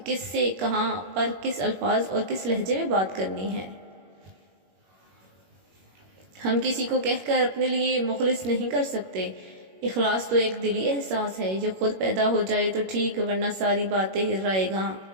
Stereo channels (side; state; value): left; late; 21 ms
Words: کس سے کہاں پر کس الفاظ اور کس لہجے میں بات کرنی ہے۔ ہم کسی کو کہہ کر اپنے لیے مخلص نہیں کر سکتے۔ اخلاص تو ایک دلی احساس ہے، یہ خود پیدا ہو جائے تو ٹھیک، ورنہ ساری باتیں رائے گاں۔